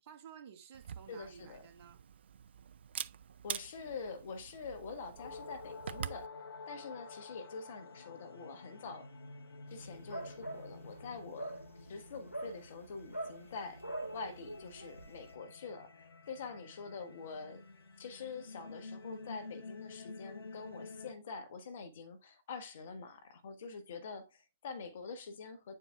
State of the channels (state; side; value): inverted; both; correlation -0.58